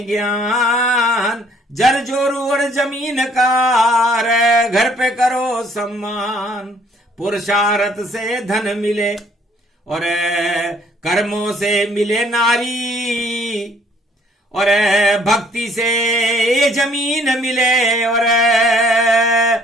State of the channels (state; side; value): normal; both; correlation 0.61